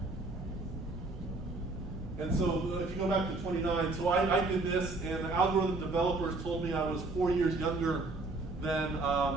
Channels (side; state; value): left; quieter; 3.2 dB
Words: And so if you go back to 29, so I did this, and the algorithm developers told me I was 4 years younger than